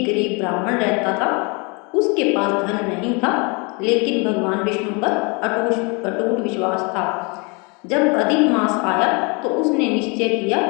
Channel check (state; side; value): quieter; right; 30.7 dB